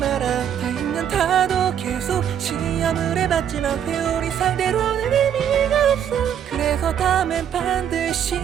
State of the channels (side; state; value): left; quieter; 9.1 dB